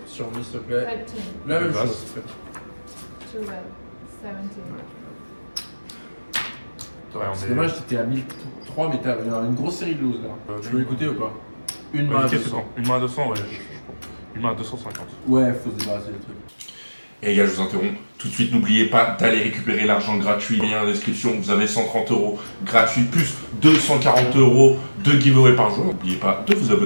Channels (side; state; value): both; inverted; correlation -1.00